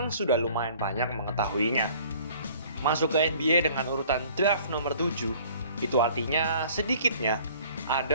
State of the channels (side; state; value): both; inverted; correlation -0.53